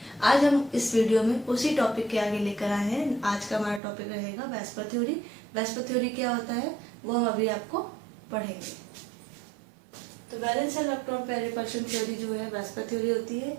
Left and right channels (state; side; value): drops out; left; at 3.8 s